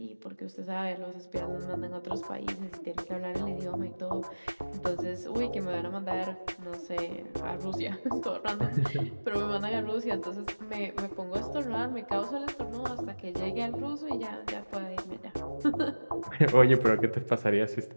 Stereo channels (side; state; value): both; inverted; correlation -1.00